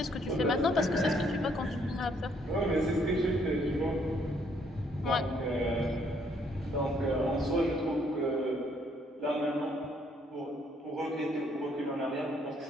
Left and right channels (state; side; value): normal; both; correlation 0.68